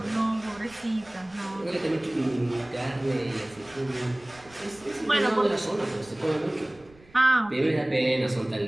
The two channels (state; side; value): noise; right; rumble, 26 dB below the sound